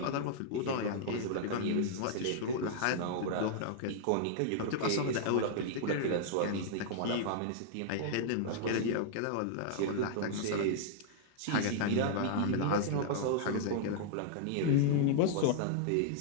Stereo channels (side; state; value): both; different; correlation -0.01